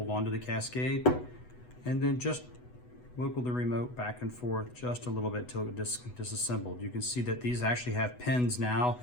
on to the cascade and then just wiggle the remote back and forth just a little bit till it disassembled. You can see that these actually have pins now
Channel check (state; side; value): late; right; 8.1 ms